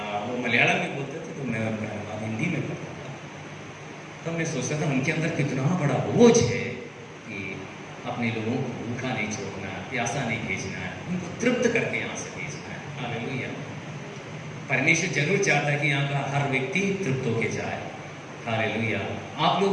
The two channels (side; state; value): both; identical; correlation 1.00